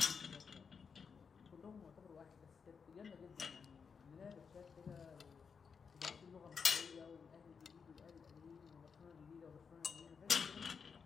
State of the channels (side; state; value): right; quieter; 5.9 dB